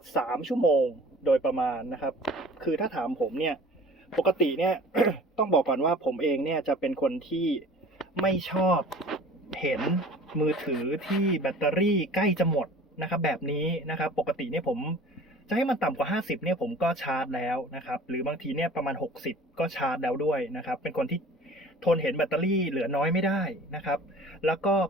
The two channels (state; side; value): normal; both; correlation 0.46